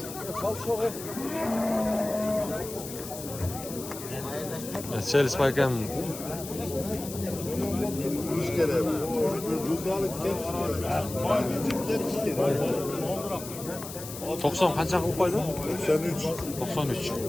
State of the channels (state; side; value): noise; left; hiss, 11 dB below the sound